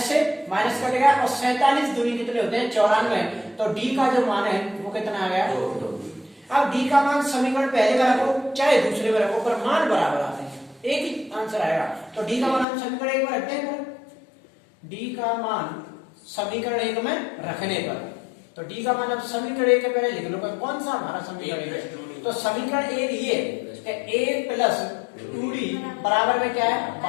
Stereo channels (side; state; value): right; drops out; at 12.7 s